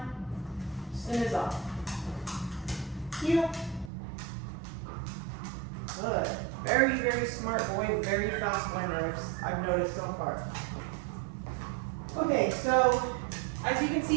stim is off. Heel. Good. Very, very smart boy, very fast learner, I've noticed so far. Okay, so as you can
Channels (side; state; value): left; drops out; at 3.9 s